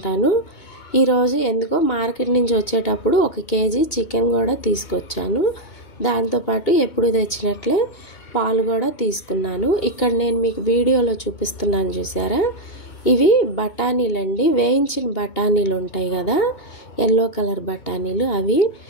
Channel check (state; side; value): late; right; 2.2 ms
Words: ఈరోజు ఎందుకో మార్కెట్ నుంచి వచ్చేటప్పుడు 1 కేజీ చికెన్ కూడా తీసుకొచ్చాను. దాంతోపాటు ఎప్పుడు తెచ్చినట్లే పాలు కూడా తీసుకున్నాను. ఇక్కడ నేను మీకు వీడియోలో చూపిస్తున్నాను చూసారా, ఇవి బఠానీలండి. వేయించిన బఠానీలు ఉంటాయి కదా, ఎల్లో కలర్ బఠానీలు.